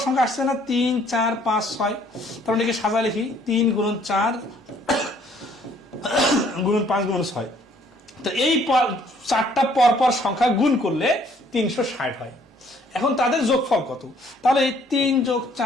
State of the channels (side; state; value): both; normal; correlation 0.62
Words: সংখ্যা আসছে না 3 4 5 6, তার মানে সাজা লিখি 3 গুণন 4 গুণন 5 গুণন 6, তো এই 4টা পরপর সংখ্যা গুণ করলে 360 হয়। এখন তাদের যোগফল কত, তাহলে 3 যোগ